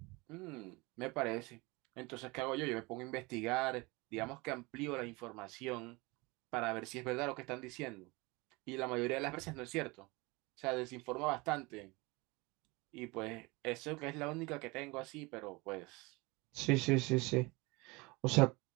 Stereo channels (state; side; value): quieter; left; 24.9 dB